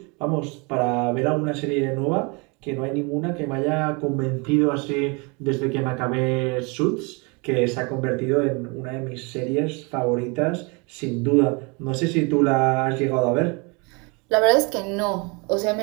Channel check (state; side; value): quieter; left; 30.4 dB